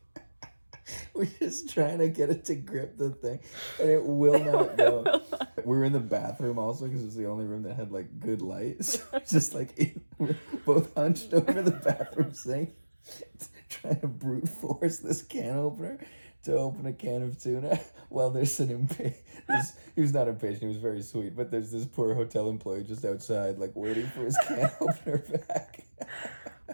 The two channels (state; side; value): inverted; both; correlation -1.00